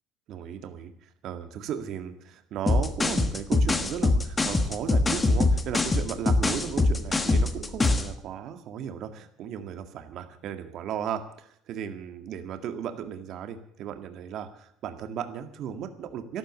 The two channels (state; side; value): normal; both; correlation 0.78